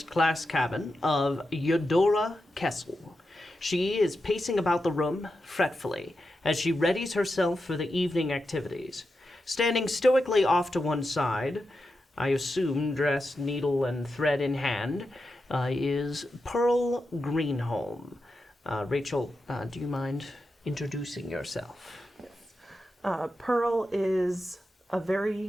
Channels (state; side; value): normal; both; correlation 0.89